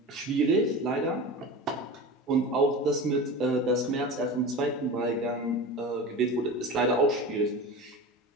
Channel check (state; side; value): normal; both; correlation 0.30